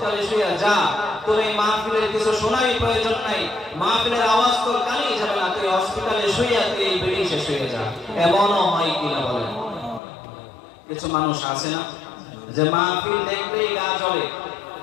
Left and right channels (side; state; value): right; drops out; at 10.0 s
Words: শুয়ে যা, তোর এই মাহফিলের কিছু শোনারই প্রয়োজন নাই, মাহফিলের আওয়াজ তোর কানেই যাবে না, তুই হসপিটালে শুয়ে তুই এই বেডে শেষ হয়ে যা। এমনও হয় কিনা বলেন? কিছু মানুষ আছে না যে মাহফিল দেখলেই গা জ্বলে,